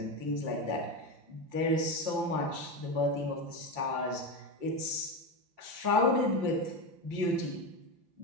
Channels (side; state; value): left; late; 5.8 ms